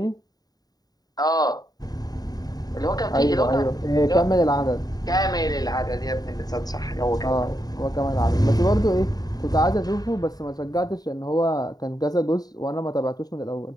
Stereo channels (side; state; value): right; late; 0.18 ms